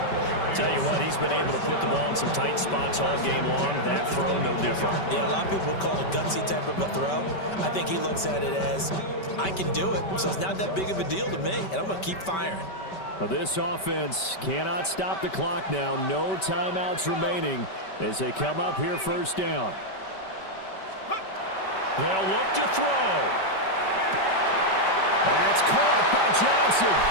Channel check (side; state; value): right; late; 5.2 ms